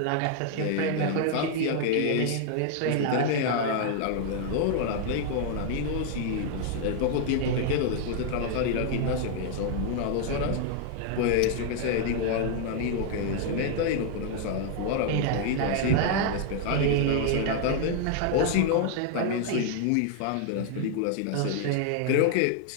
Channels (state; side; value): different; both; correlation 0.00